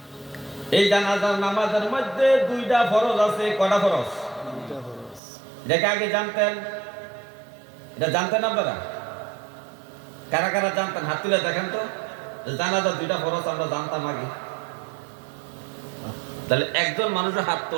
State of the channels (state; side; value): drops out; left; at 5.2 s